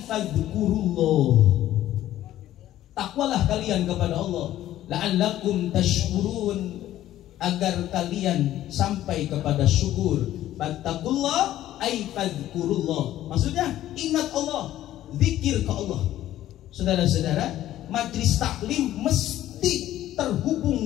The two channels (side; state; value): right; quieter; 13.4 dB